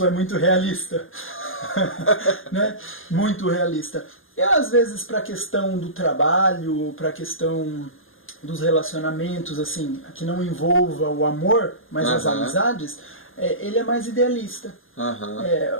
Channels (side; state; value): right; late; 0.59 ms